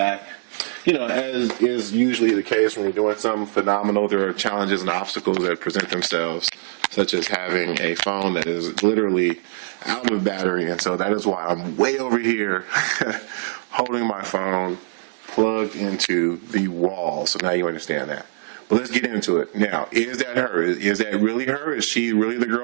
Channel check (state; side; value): silent; left; digital silence